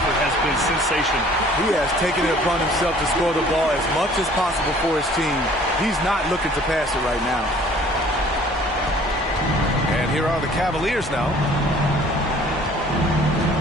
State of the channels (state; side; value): normal; both; correlation 0.53